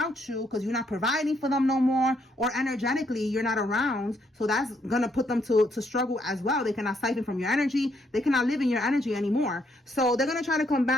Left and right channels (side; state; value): both; normal; correlation 0.73